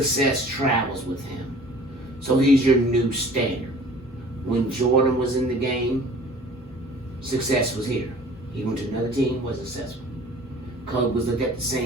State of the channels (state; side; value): normal; both; correlation 0.48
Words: travels with him. So he's your new standard. When Jordan was in the game, success was here. He went to another team, was successful. Kobe was looked at the